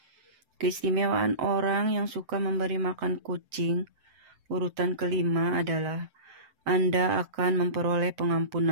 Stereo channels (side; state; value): left; late; 7.7 ms